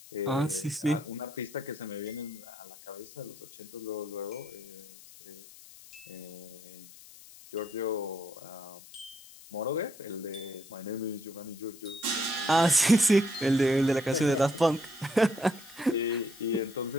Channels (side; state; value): left; noise; hiss, 19 dB below the sound